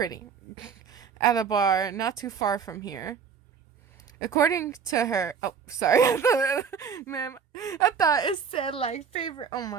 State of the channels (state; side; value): quieter; left; 6.7 dB